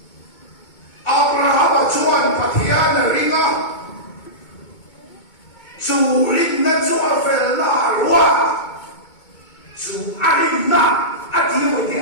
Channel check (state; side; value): late; right; 2.2 ms